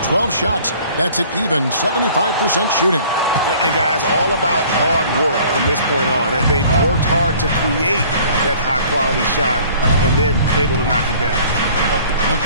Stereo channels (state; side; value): inverted; both; correlation -0.52